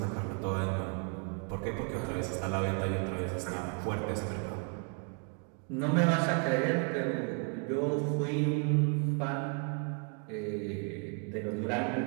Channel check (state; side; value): quieter; left; 39.0 dB